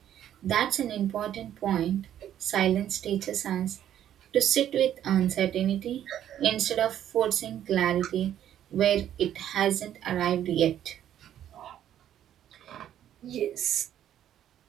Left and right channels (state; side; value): quieter; left; 10.9 dB